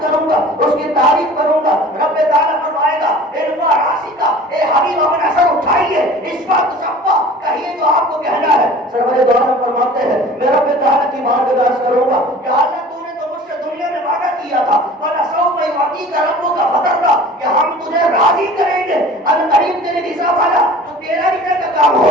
کروں گا، اس کی تعریف کروں گا۔ رب تعالیٰ فرمائے گا ارفع راسک، اے حبیب اپنا سر اٹھائیے، اشفع تشفع، کہیے جو آپ کو کہنا ہے۔ سرور دو عالم فرماتے ہیں میں رب تعالیٰ کی بات میں عرض کروں گا کہ اللہ تو نے تو مجھ سے دنیا میں وعدہ کیا تھا وَلَسَوْفَ يُعْطِيكَ رَبُّكَ فَتَرْضَىٰ کہ ہم تجھے راضی کریں گے، القریب تیرے رضا والا، تو تیرا رضا کا کام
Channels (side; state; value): both; normal; correlation 0.44